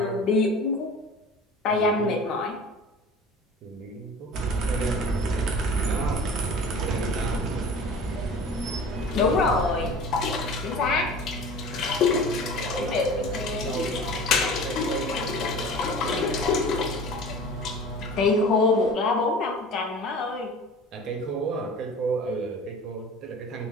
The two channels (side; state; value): both; normal; correlation 0.40